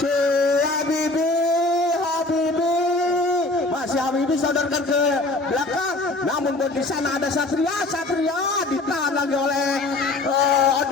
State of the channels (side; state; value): right; quieter; 3.0 dB